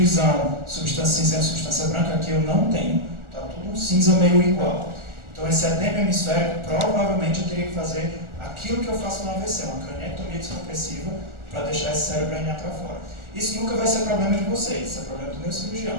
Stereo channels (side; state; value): left; late; 1.4 ms